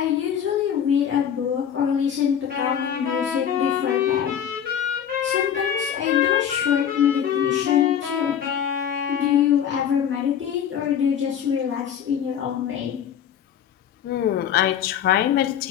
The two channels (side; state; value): right; quieter; 9.0 dB